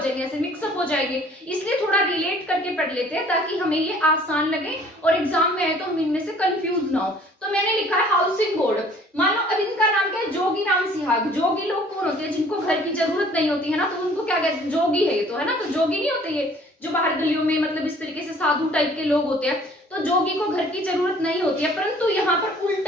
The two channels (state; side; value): normal; both; correlation 0.54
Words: ऐसे मिक्सअप हो जाएंगे। इसलिए थोड़ा रिलेट करके पढ़ लेते हैं ताकि हमें ये आसान लगे और एग्जाम में आए तो हम इनमें से कंफ्यूज ना हो। तो मैंने लिखा है हाउसिंग बोर्ड। मानो अब इनका नाम क्या है? जोगीराम सिहाग। जोगी लोग कौन होते हैं? जिनको घर की जरूरत नहीं होती है ना, तो उनको क्या कहते हैं? जोगी है ये तो, है ना। तो जोगी नहीं होते ये जो बाहर गलियों में मतलब इस तरीके से साधु टाइप के लोग होते हैं, तो जोगी को घर की जरूरत नहीं होती है। परंतु यहाँ पर